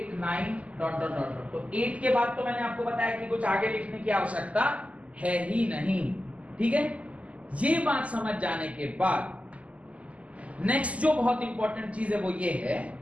9 dot dot dot. तो 8 के बाद तो मैंने आपको बताया कि कुछ आगे लिखने की आवश्यकता है ही नहीं, ठीक है। ये बात समझ जाने के बाद नेक्स्ट जो बहुत इंपॉर्टेंट चीज है वो ये है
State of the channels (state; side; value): late; left; 0.067 ms